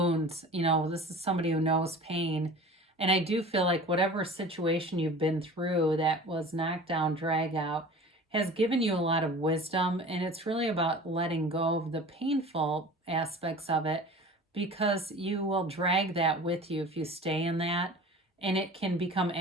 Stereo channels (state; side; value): normal; both; correlation 0.40